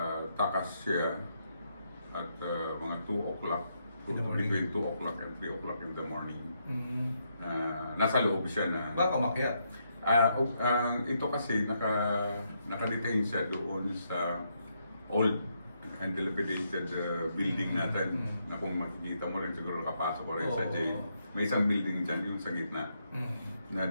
siya at mga 2 o'clock, between 2 o'clock and 3 o'clock in the morning. Nasa loob siya na... Baka umakyat? Ito kasi naka-detain siya doon sa old and dilapidated building natin na kung makikita mo rin siguro nakapasok ko rin sa jail. May isang building dyan, yung sa gitna, na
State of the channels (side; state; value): both; inverted; correlation -0.78